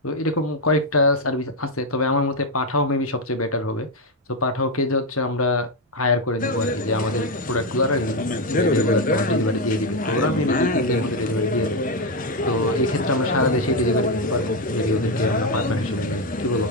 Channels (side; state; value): both; normal; correlation 0.06